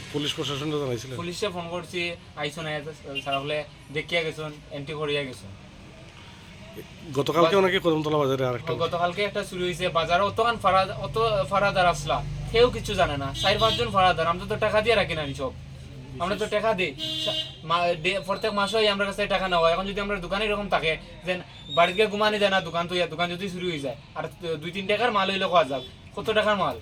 পুলিশ প্রশাসনটা জানাইছিলেন? পুলিশে ফোন করছি, আইসো না সারা হলে দেখিয়া গেছেন, এন্ট্রি করিয়া গেছেন। গতকালকে নাকি কদমতলা বাজারে আরেকটা গতকালকে একটা চুরি হয়েছে বাজারে। অত ফারাদার আসলা, কেউ কিছু জানে না, 4-5 জন ফারাদার। আমরা তো টাকা দিয়ে রাখি না সব, আমরা তো টাকা দিই প্রত্যেক মাসে আমরা কাছে টাকা নেওয়া। এখন যদি আমরা দোকানে এরকম থাকে যে বাড়িতে ঘুমানি যায় না, দোকান যদি চুরি হয়ে যায়, আর 2-3 টাকার মাল হইলে খাওয়া যাক, কত টাকার মাল।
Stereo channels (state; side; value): identical; both; correlation 1.00